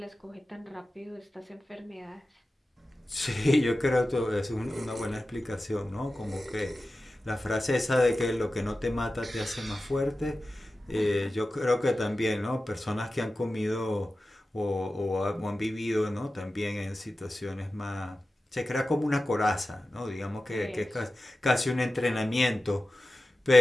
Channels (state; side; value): normal; both; correlation 0.94